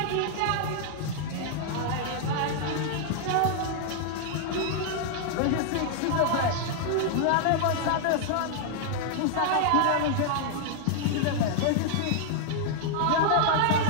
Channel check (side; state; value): both; different; correlation -0.01